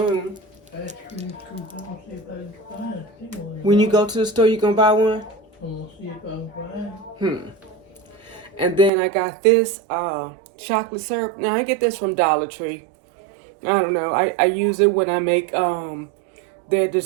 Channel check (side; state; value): left; drops out; at 8.9 s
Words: Ice cream scoop. I'm gonna see if I can find it. When you go to the store, you gonna buy one? I'm gonna see if I can find it. And then I got this chocolate syrup. Now I get this from Dollar Tree. I don't know. I use it when I make their